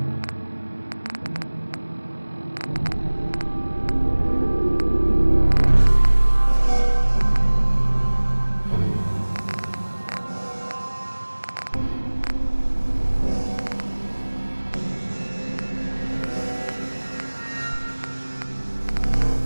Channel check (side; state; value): both; inverted; correlation -1.00